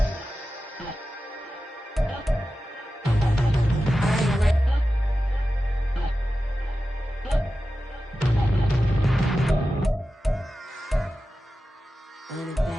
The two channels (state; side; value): normal; both; correlation 0.93